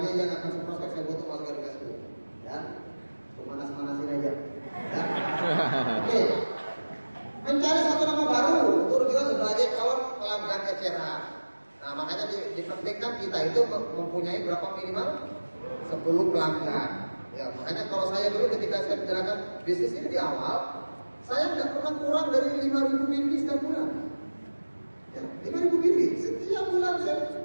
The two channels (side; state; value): both; inverted; correlation -1.00